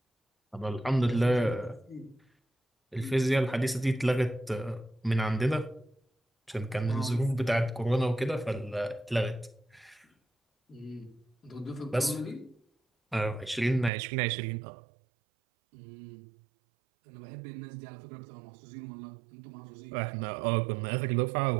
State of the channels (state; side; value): drops out; left; at 13.9 s